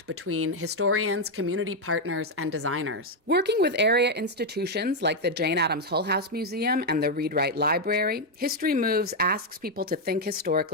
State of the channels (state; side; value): normal; both; correlation 0.02